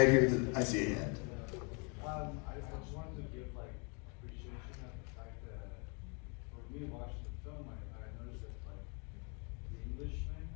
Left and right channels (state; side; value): quieter; right; 34.4 dB